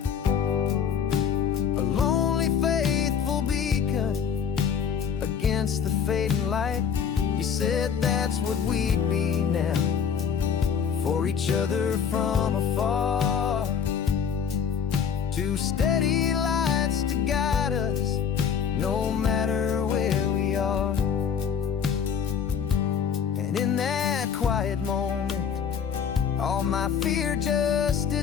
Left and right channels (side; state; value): right; quieter; 7.3 dB